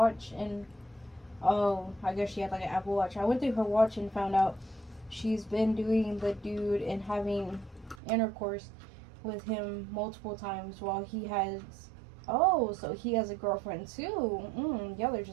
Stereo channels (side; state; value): left; drops out; at 8.0 s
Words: and, I guess she had like an Apple Watch. I went through her watch and found out she's been doing the dude and having intercourse with him multiple times while he has, so he has a girlfriend too. Yeah, they're